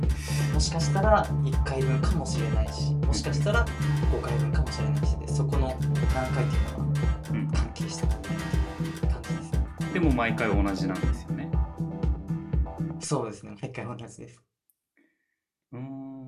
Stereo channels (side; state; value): both; identical; correlation 1.00